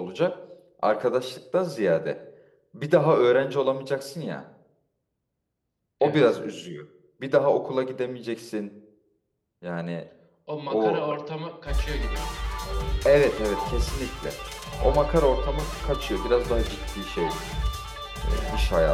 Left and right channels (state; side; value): identical; both; correlation 1.00